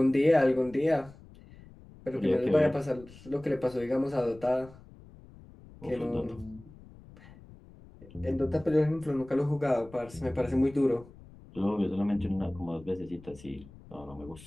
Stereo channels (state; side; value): noise; left; rumble, 21 dB below the sound